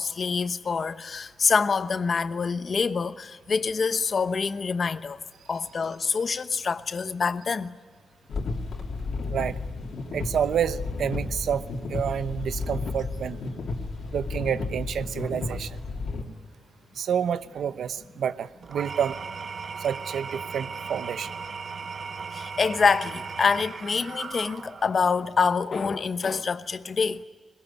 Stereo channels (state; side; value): normal; both; correlation 0.81